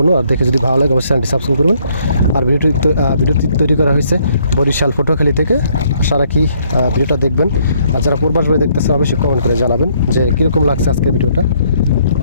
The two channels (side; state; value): both; inverted; correlation -0.67